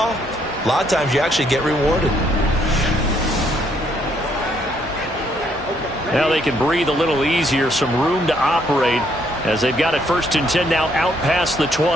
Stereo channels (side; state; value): both; normal; correlation 0.70